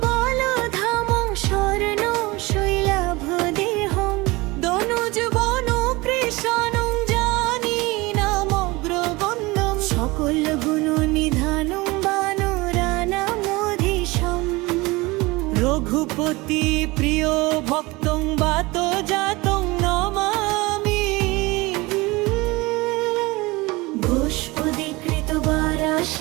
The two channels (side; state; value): left; quieter; 22.7 dB